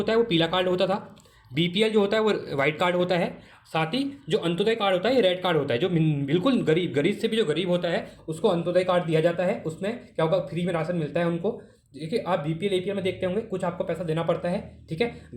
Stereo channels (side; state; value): both; identical; correlation 1.00